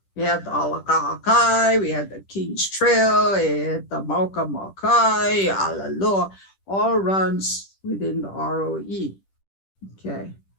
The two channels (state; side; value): late; right; 10 ms